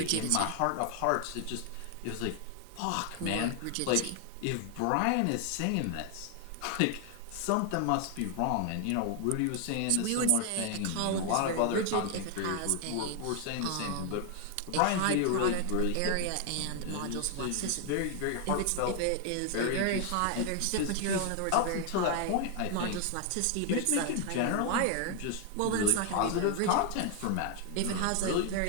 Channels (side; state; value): both; different; correlation 0.00